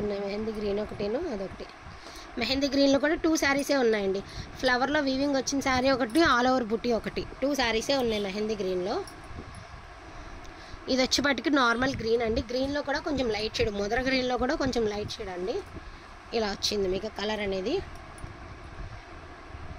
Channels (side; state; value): both; identical; correlation 1.00